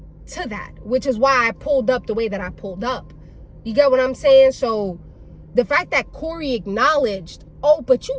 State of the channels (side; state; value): both; identical; correlation 1.00